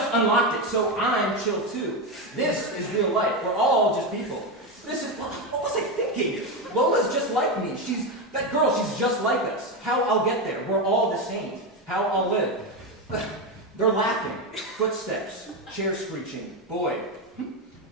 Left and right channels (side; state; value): both; normal; correlation 0.12